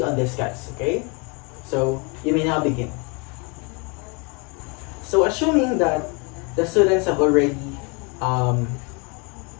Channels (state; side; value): quieter; right; 31.1 dB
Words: on this, guys. Okay. So you may now begin. So assuming that the students have already